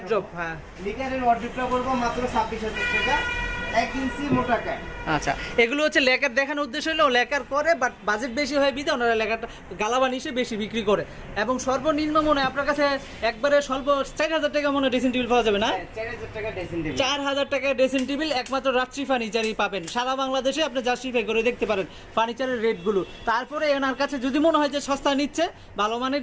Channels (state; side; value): identical; both; correlation 1.00